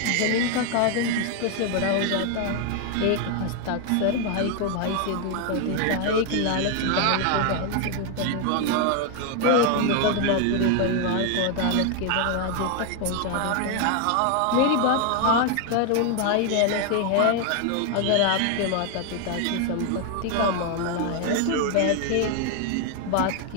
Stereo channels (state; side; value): different; both; correlation 0.01